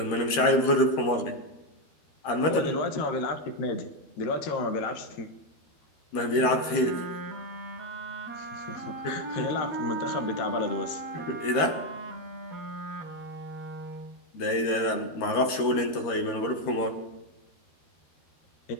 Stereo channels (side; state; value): right; late; 13 ms